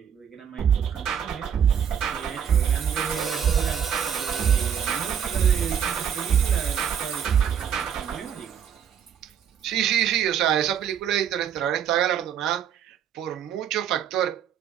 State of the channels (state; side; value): quieter; left; 8.4 dB